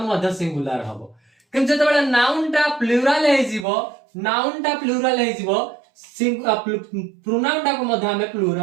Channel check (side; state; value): left; drops out; at 3.7 s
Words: मध्य सिंगुलर हबो किंतु जतेबेले नाउन टा प्लुरल हे जिवो प्रोनाउन टा को मध्य हमें